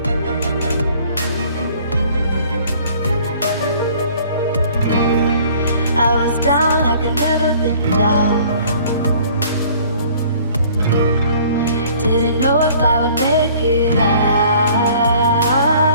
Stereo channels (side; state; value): both; inverted; correlation -0.54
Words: I was down like I've never been down. Didn't know if I would make it out.